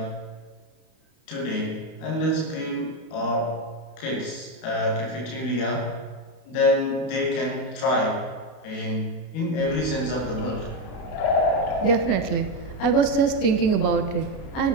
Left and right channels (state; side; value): late; right; 31 ms